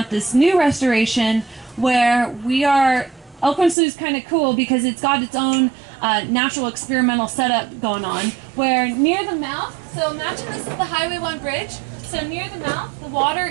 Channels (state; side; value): drops out; left; at 3.8 s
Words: this new restoration where we are. Elkhorn Slough is kind of cool because it's got its own natural experimental setup going on, where near the mouth, so imagine this is the Highway 1 bridge, so near the mouth the water